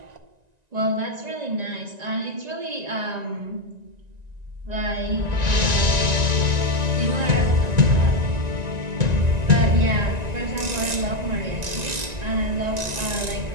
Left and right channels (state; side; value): late; left; 1.9 ms